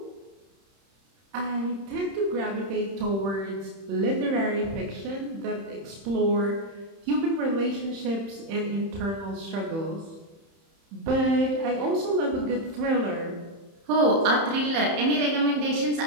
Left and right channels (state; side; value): late; left; 31 ms